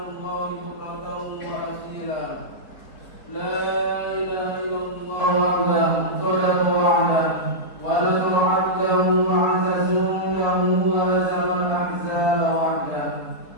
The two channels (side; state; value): right; late; 4.0 ms